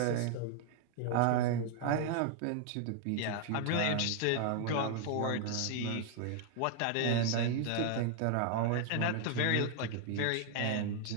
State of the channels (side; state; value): both; different; correlation 0.00